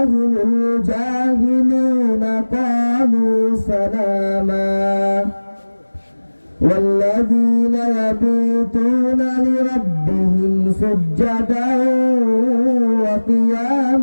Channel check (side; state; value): both; inverted; correlation -1.00